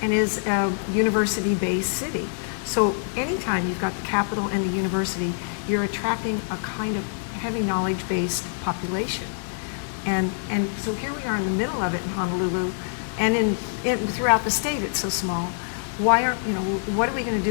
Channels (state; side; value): silent; right; digital silence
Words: and is a university-based city. So anytime you've got the capital and the university, you're attracting a kind of heavy knowledge-based population. And so here we are in the middle of it in Honolulu, and throughout the state it's so small. What are we going to